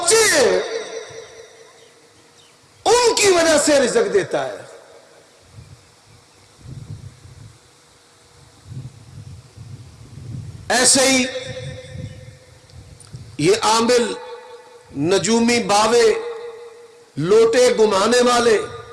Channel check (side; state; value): both; identical; correlation 1.00